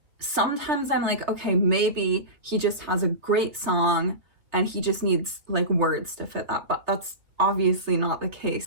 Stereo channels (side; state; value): left; late; 3.1 ms